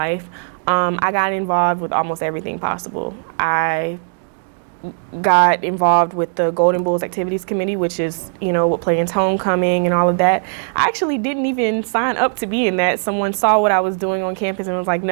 I got involved with almost everything possible. I got involved with the Golden Bulls Activities Committee, which is, with Players Homecoming and all of that. I actually didn't even sign up to be in that. Someone saw what I was doing on campus and was like,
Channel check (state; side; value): silent; left; digital silence